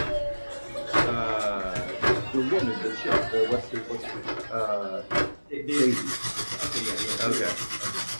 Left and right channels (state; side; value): inverted; both; correlation -1.00